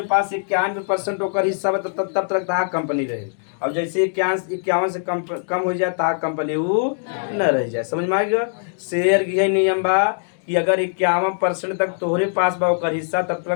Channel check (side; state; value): right; silent; digital silence